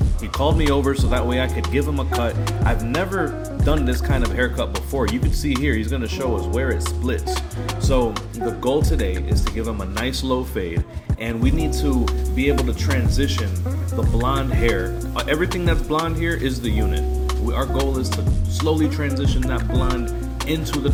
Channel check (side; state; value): both; identical; correlation 1.00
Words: He called me over so that way I could give him a cut. I've never done this kind of haircut before. You can see here, he's gonna show us where it splits. So the goal today is to give him a nice low fade, and we need to be able to transition the blonde hair. Everything that's blonde here is the unit. Our goal is to slowly transition that blonde into the